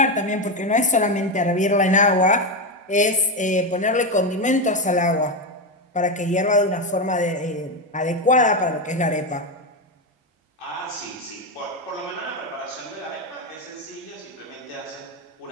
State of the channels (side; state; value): both; normal; correlation 0.11